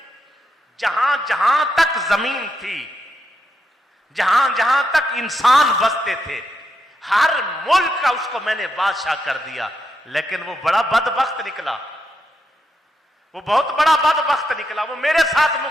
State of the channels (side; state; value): both; normal; correlation 0.83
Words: जहां जहां तक जमीन थी, जहां जहां तक इंसान बसते थे, हर मुल्क का उसको मैंने बादशाह कर दिया। लेकिन वो बड़ा बदबख्त निकला, वो बहुत बड़ा बदबख्त निकला। वो मेरे साथ